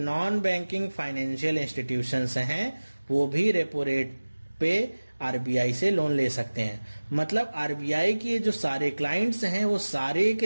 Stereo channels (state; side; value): inverted; both; correlation -1.00